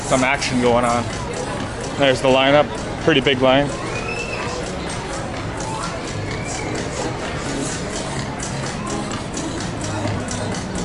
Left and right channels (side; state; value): both; identical; correlation 1.00